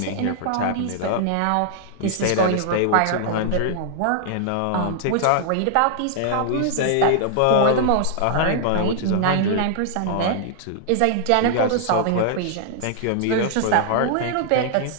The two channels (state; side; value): different; both; correlation -0.01